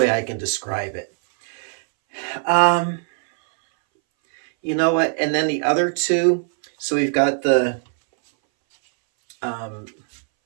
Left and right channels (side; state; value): left; silent; 62 dB below the other